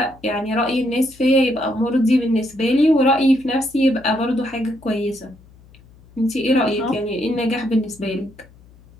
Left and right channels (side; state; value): left; noise; hum, 26 dB below the sound